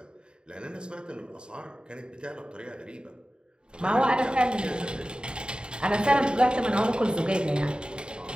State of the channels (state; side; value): late; left; 0.050 ms